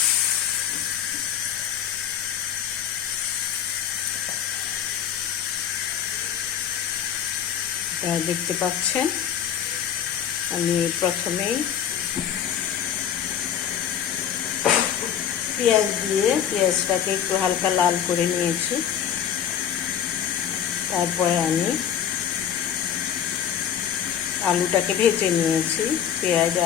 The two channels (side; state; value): right; quieter; 9.2 dB